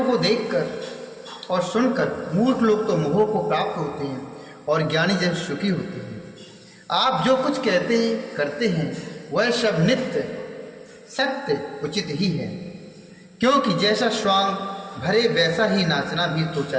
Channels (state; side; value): identical; both; correlation 1.00